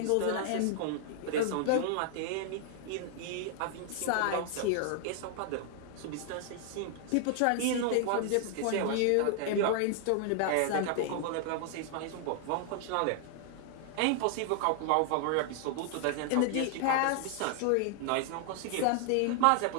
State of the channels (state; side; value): different; both; correlation 0.00